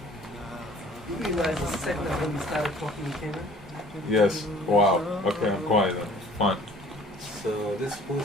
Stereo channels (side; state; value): both; normal; correlation 0.52